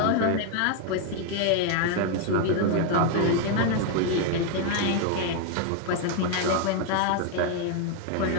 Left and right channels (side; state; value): both; different; correlation 0.01